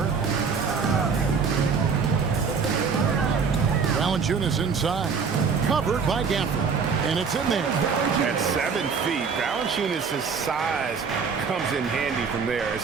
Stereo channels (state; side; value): quieter; left; 5.7 dB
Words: Valanciunas inside. Covered by Gafford. And it's in there. At 7 feet, Valanciunas' size comes in handy from there,